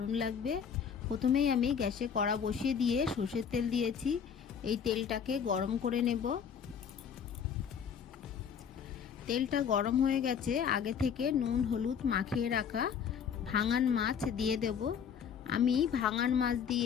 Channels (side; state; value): right; quieter; 7.4 dB